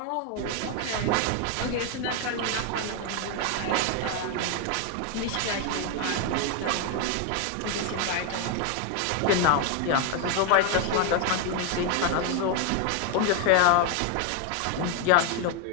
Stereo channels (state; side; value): different; both; correlation 0.01